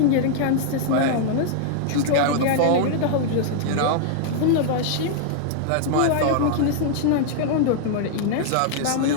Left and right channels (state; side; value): different; both; correlation -0.01